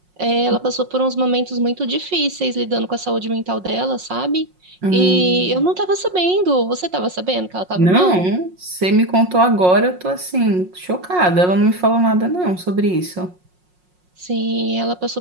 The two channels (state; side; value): late; left; 5.5 ms